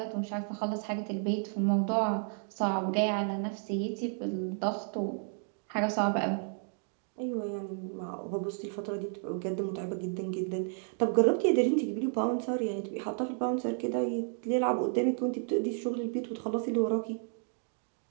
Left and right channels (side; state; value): left; silent; 56 dB below the other